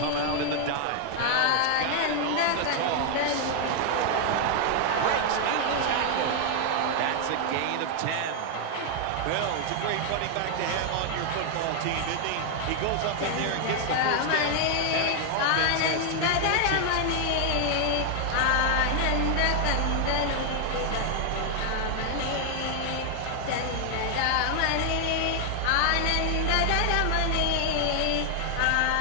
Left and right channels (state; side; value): different; both; correlation 0.00